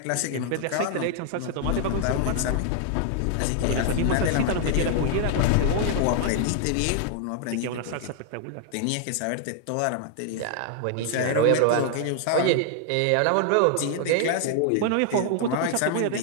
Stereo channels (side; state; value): both; different; correlation 0.00